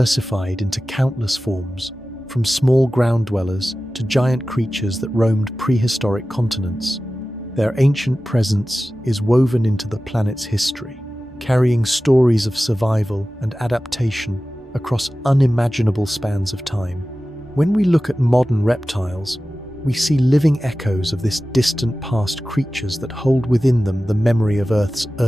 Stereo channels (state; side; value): normal; both; correlation 0.95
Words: into countless forms, from small ground dwellers to giant creatures that roamed prehistoric continents. Their ancient presence is woven into the planet's history, carrying stories of survival and adaptation across unimaginable spans of time. When we look at modern reptiles, we see living echoes of this distant past, creatures that hold within them the memory of Earth's